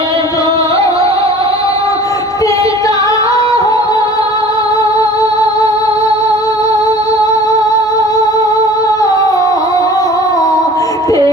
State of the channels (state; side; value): normal; both; correlation 0.45